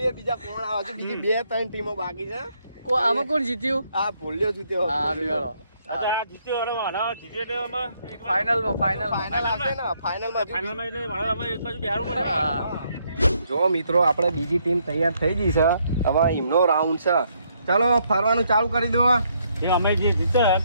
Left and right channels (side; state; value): both; inverted; correlation -0.72